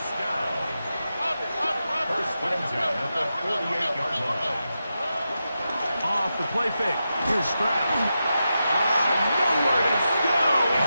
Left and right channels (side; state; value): both; inverted; correlation -0.89